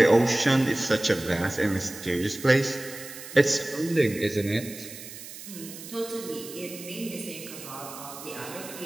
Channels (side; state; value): right; noise; hiss, 13 dB below the sound